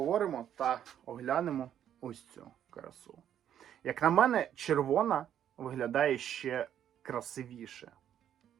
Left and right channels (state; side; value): quieter; left; 10.1 dB